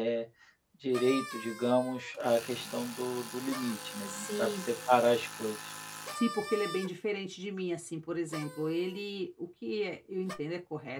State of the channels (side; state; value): both; identical; correlation 1.00